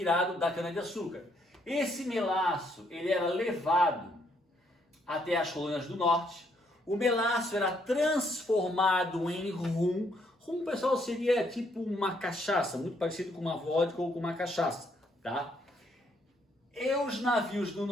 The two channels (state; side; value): normal; both; correlation 0.71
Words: da cana-de-açúcar. Esse melaço, ele era levado até as colônias do norte. O melaço era transformado em rum. Rum, pessoal, seria tipo uma cachaça, muito parecido com uma vodka ou com uma cachaça, tá? E os navios do